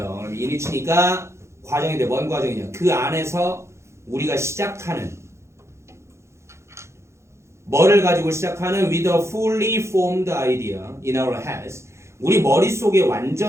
그럼 이니치니까 과정인데 뭔 과정이냐? 그 안에서 우리가 시작하는 뭐를 가지고 시작하는 with a fully formed idea in our heads 우리 머릿속에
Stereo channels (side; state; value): left; late; 0.13 ms